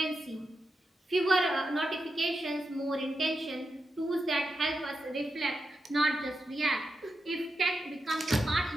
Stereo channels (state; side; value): normal; both; correlation 0.87